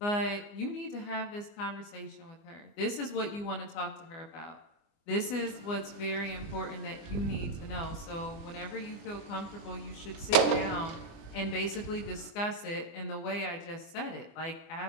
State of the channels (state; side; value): late; right; 24 ms